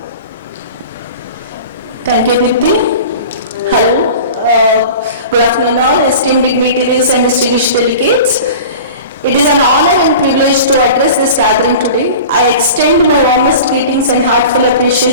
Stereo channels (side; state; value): both; inverted; correlation -0.38